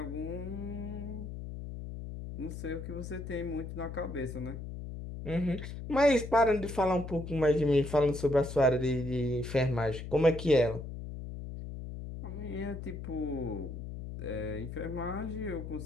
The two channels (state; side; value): noise; left; hum, 8 dB below the sound